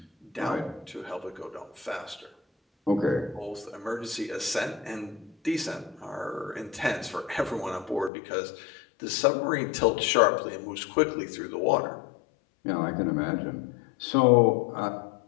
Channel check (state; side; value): drops out; right; at 8.1 s